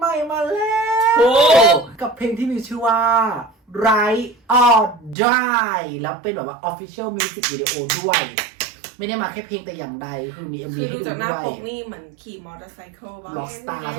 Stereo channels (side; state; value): left; drops out; at 5.2 s